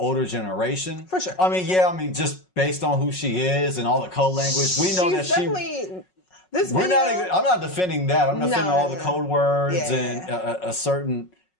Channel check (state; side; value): late; right; 5.4 ms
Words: generation. For sure. I mean, just based on who she is and all the code language, we know that I'm not defending that. I'm defending all the code words and a certain